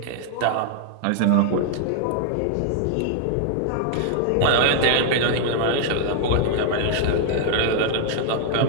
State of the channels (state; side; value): different; both; correlation 0.00